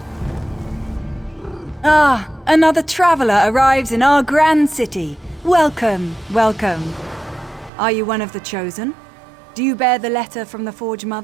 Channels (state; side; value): drops out; left; at 7.7 s